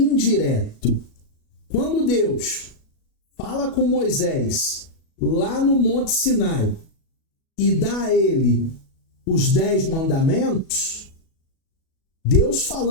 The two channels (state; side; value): late; right; 37 ms